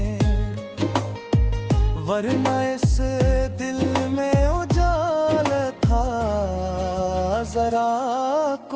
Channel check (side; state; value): both; identical; correlation 1.00